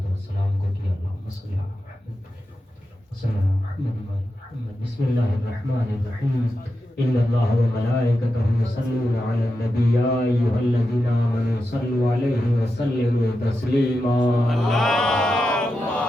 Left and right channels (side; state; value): both; normal; correlation 0.89